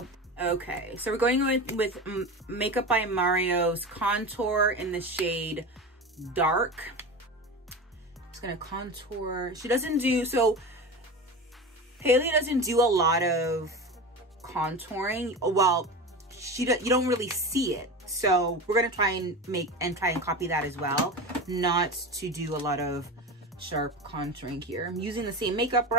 Okay, so we're going with Makeup by Mario's contour in the shade Dark. I'm just gonna contour. She doesn't do, so Hailey doesn't do a lot of contouring. Well, you don't really see it. So we're gonna try and copy that as well. Not to do a lot of sharp contouring here. I'm using the same makeup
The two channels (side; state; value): both; normal; correlation 0.27